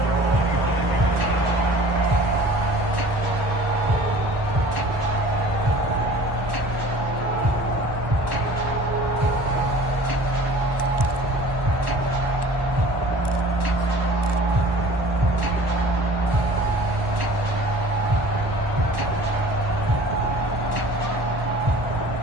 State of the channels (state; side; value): late; left; 1.1 ms